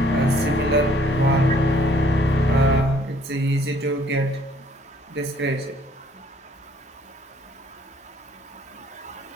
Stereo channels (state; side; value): normal; both; correlation 0.61